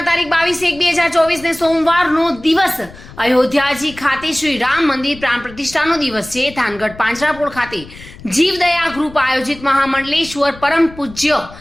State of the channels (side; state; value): left; noise; rumble, 18 dB below the sound